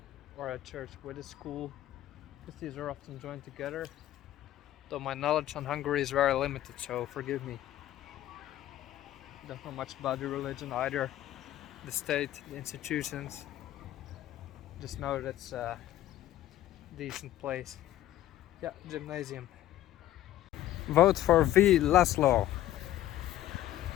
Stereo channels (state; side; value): quieter; right; 13.6 dB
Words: or a church with a school, because these are often joined together. Though my knowledge on Hungary is very limited, so forgive me. Don't know much about the religion either, the state, the institutions. Just know that it's a decent place. Yeah, gymnasium. Vote for V. Laszlo.